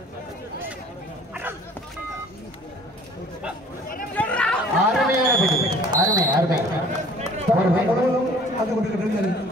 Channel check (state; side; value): normal; both; correlation 0.52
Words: அருமையான பிடி, அருமை அருமை.